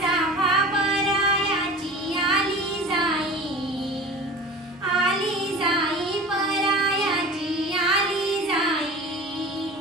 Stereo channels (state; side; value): normal; both; correlation 0.38